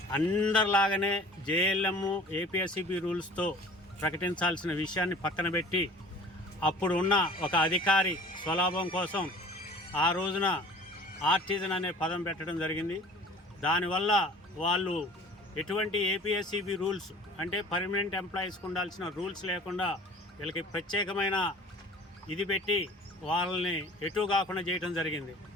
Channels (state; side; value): normal; both; correlation 0.46